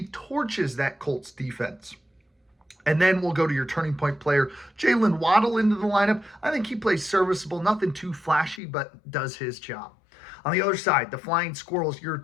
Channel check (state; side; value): drops out; right; at 8.6 s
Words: torches that Colts defense. And then we'll go to your turning point player, Jalen Waddle, into the lineup. I think he plays serviceable, nothing too flashy, but does his job. On the other side, the Flying Squirrels, your